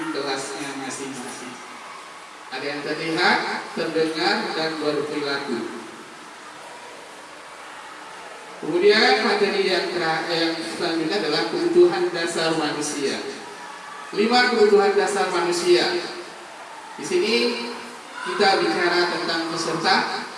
kelasnya masing-masing. Ada yang terlihat, terdengar, dan berperilaku. Kemudian materi yang selanjutnya adalah kebutuhan dasar manusia. 5 kebutuhan dasar manusia. Di sini kita bicara tentang peserta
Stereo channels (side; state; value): both; identical; correlation 1.00